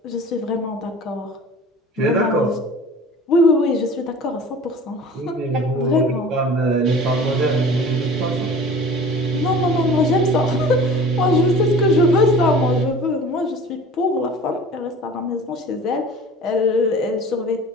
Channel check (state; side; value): normal; both; correlation 0.42